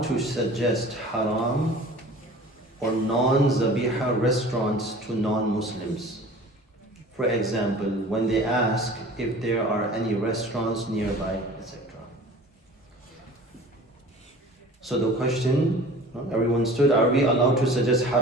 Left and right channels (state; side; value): normal; both; correlation 0.43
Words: to suggest haram or non-zabiha restaurants to non-Muslims? For example, when they ask if there are any restaurants nearby, etc. So the question, everyone stood, are we allowed to suggest